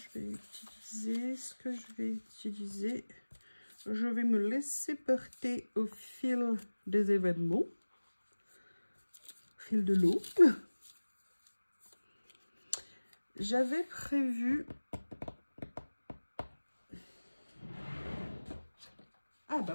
vais utiliser ce que je vais utiliser. Je vais me laisser porter au fil des événements. Au fil de l'eau. J'avais prévu... Ah bah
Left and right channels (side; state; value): both; inverted; correlation -1.00